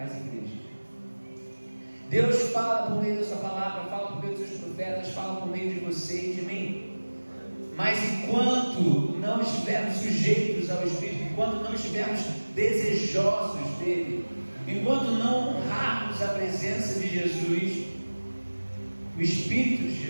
igrejas. Deus fala por meio da sua palavra, fala por meio dos seus profetas, fala por meio de você e de mim. Mas enquanto não estivermos sujeitos ao Espírito, enquanto não estivermos desejosos dele, enquanto não honrarmos a presença de Jesus, o Espírito de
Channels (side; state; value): both; inverted; correlation -1.00